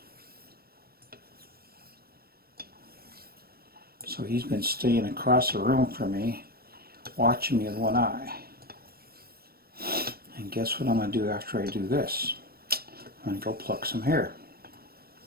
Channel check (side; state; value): left; late; 0.44 ms